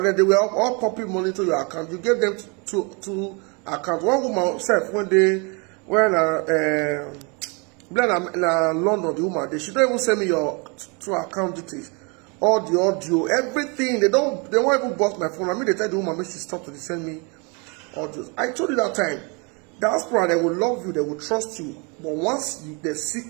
they were all popping money to your account. You gave them two accounts. One woman said when London, the woman, she don't even send me your two account details. All the audio, everything. They won't even bust my phone. I mean, they tell the woman, make she stop to send me audios. I told you that time. Diaspora, they will love you, they will trust you. But once they see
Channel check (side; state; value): left; quieter; 32.0 dB